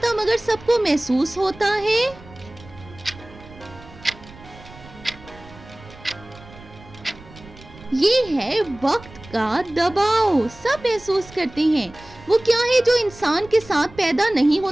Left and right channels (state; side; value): noise; right; rumble, 20 dB below the sound